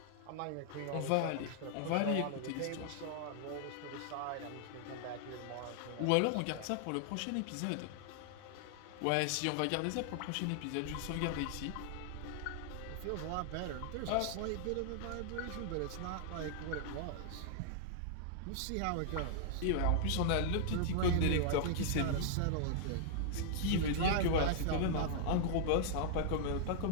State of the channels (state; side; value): different; both; correlation -0.01